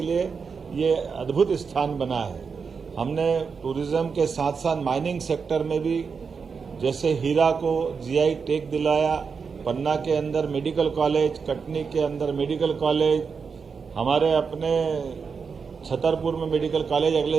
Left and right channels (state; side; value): quieter; left; 5.6 dB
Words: लिए ये अद्भुत स्थान बना है। हमने टूरिज्म के साथ साथ माइनिंग सेक्टर में भी, जैसे हीरा को जीआई टैग दिलाया, पन्ना के अंदर मेडिकल कॉलेज, कटनी के अंदर मेडिकल कॉलेज, हमारे अपने छतरपुर में मेडिकल कॉलेज